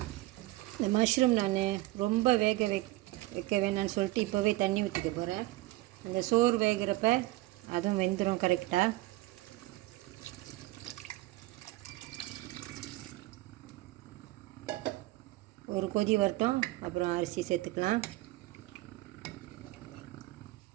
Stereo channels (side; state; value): left; quieter; 18.6 dB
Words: இந்த மஷ்ரூம் நான் ரொம்ப வைக்க வேணான்னு சொல்லிட்டு இப்போவே தண்ணி ஊற்றிக்க போகிறேன். இந்த சோறு வேகிறப்ப அதுவும் வெந்துடும் கரெக்டாக. ஒரு கொதி வரட்டும். அப்புறம் அரிசி சேர்த்துக்கலாம்.